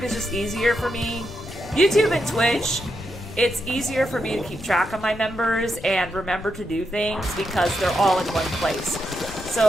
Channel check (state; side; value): noise; left; rumble, 15 dB below the sound